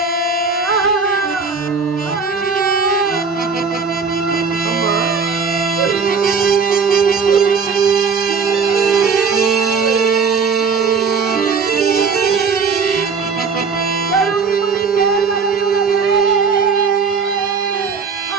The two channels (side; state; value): left; quieter; 5.3 dB